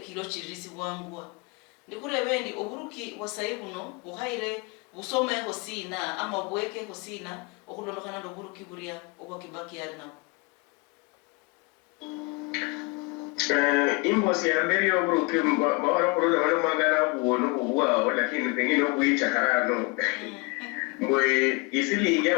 chirisi bwangwa ndikure bendi oburuki wasai buno buhaire busome hosina ama bweke hosina okulondokana ndo buruki buria obwa Kibaki yarina imbosi ya mbere yo buruki bawara kurola bano magana buono ubwa lakini pengine okuyicha harano mwe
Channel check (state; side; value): quieter; right; 28.5 dB